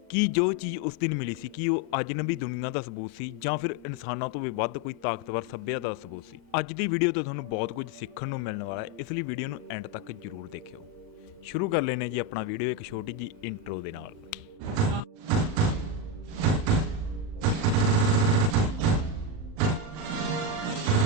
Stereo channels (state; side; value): late; left; 38 ms